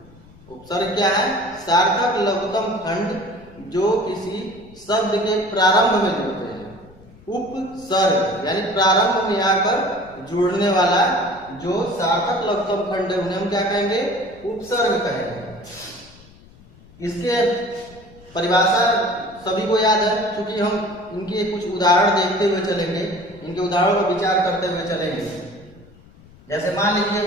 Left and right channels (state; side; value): noise; left; rumble, 24 dB below the sound